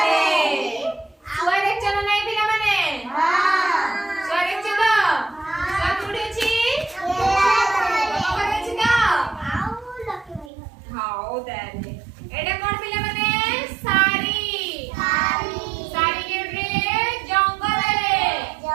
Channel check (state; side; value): drops out; left; at 10.5 s